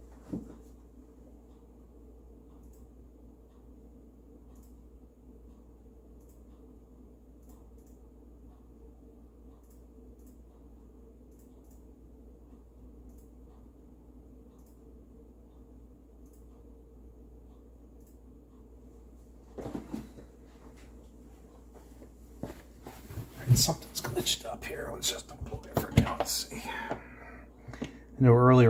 Something's glitched up here. Let's just unplug it for now. Let's see. I know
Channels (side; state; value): both; identical; correlation 1.00